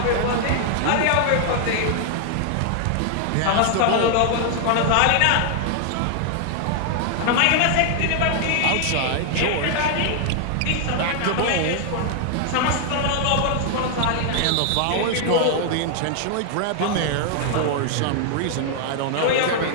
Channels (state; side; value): different; both; correlation 0.00